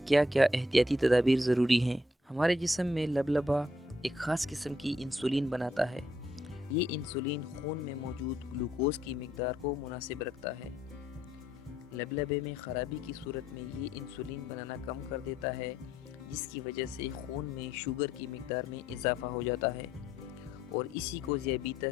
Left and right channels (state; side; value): normal; both; correlation 0.72